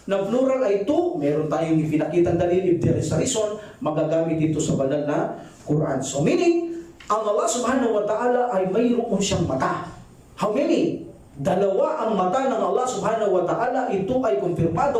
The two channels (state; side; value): identical; both; correlation 1.00